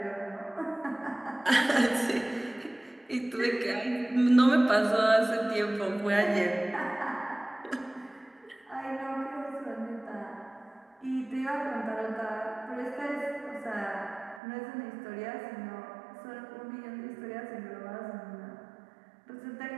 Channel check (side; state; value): left; drops out; at 14.4 s